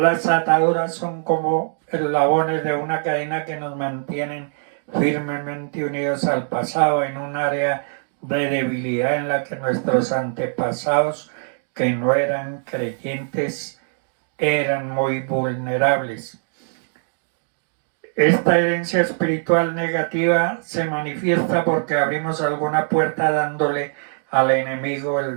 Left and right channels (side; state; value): left; silent; 60 dB below the other